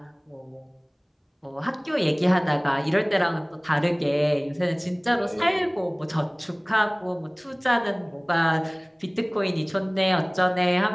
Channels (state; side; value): identical; both; correlation 1.00